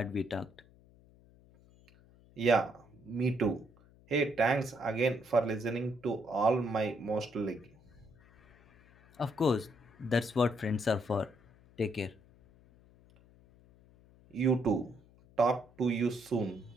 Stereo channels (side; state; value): left; noise; hum, 27 dB below the sound